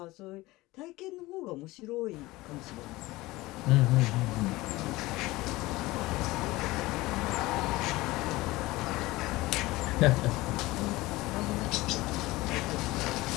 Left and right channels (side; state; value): right; quieter; 19.7 dB